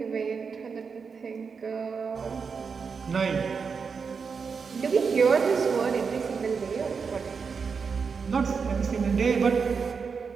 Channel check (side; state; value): left; quieter; 5.6 dB